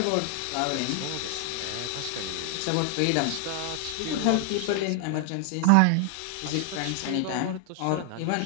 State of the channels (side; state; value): both; different; correlation 0.00